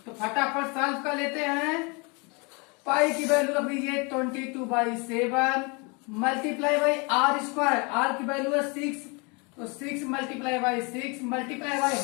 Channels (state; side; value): quieter; right; 30.5 dB